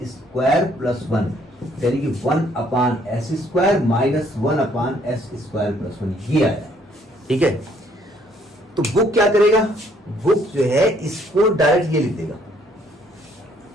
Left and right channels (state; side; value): normal; both; correlation 0.65